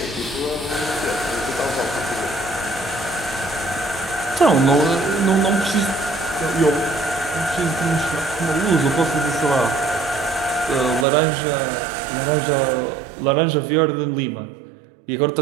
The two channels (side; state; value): left; drops out; at 11.1 s